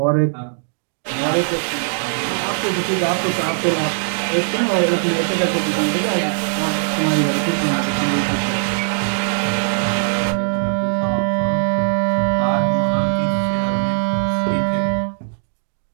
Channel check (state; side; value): silent; left; digital silence